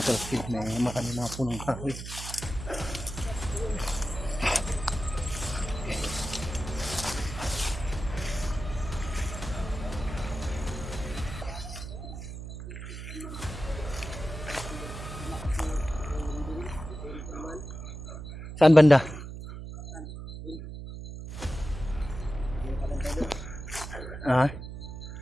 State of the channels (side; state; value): right; noise; hum, 9 dB below the sound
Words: talakid. May marami mga punong kahoy. Saan banda? Ah,